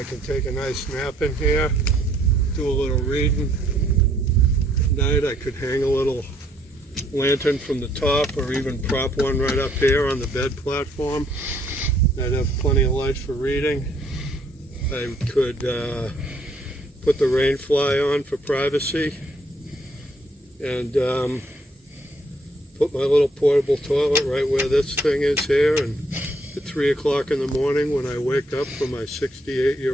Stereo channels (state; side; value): normal; both; correlation 0.67